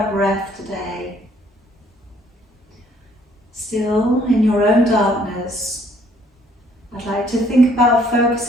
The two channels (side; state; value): both; normal; correlation 0.63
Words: breath today, still in your own darkness, I'd like to think about